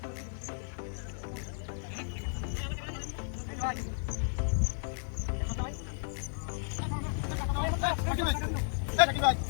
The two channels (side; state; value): right; silent; 55 dB below the other